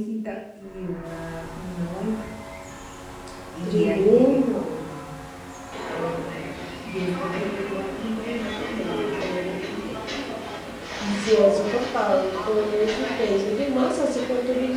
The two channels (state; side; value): identical; both; correlation 1.00